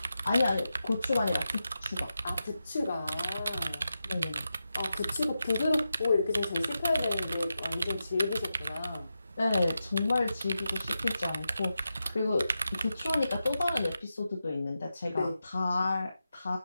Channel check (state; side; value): inverted; both; correlation -0.89